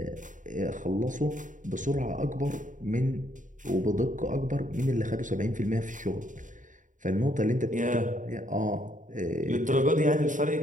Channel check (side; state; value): left; late; 0.37 ms